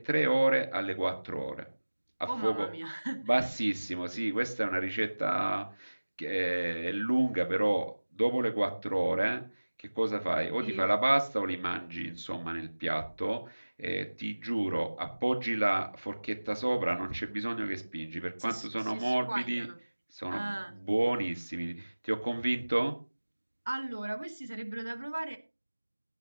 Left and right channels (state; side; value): inverted; both; correlation -1.00